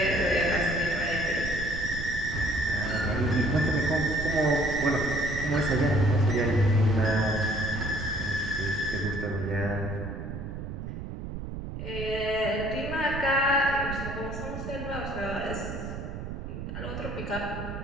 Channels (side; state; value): right; noise; rumble, 7 dB below the sound